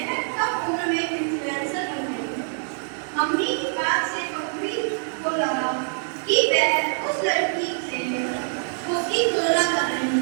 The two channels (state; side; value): silent; left; 55 dB below the other